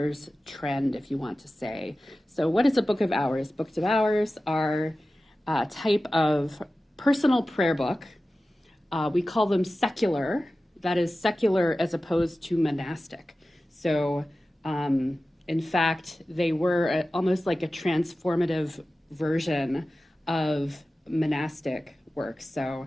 trend, if you want to say. So what is a Book of Hours? Books of Hours are a type of personal prayer book. We call them secular. That is secular as opposed to monastic. So in fact, they were almost like a transformative version of monastic works.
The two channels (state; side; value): normal; both; correlation 0.95